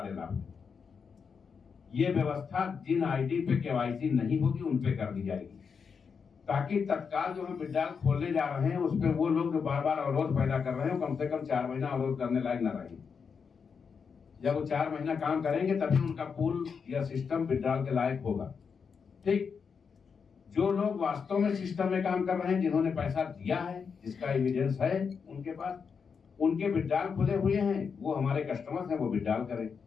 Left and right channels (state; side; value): quieter; right; 6.0 dB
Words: लाभ। ये व्यवस्था जिन आईडी पे केवाईसी नहीं होगी उन पे कर दी जाएगी, ताकि तत्काल जो हम विड्रॉल खोलने जा रहे हैं उस पर वो लोग जो बार बार अवरोध पैदा कर रहे हैं कम से कम 4 महीना अवरोध करने लायक न रहे। जब वो 4 महीना काम करेंगे तभी उनका पूल या सिस्टम विड्रॉल के लायक होगा। ठीक, जो लोग वास्तव में सिस्टम में काम कर रहे हैं, जिन्होंने पैसा दिया है, जिसका एविडेंस है उनके पास, उनके विड्रॉल खुले हुए हैं, वो हमारे कस्टमर्स हैं, वो विड्रॉल करें।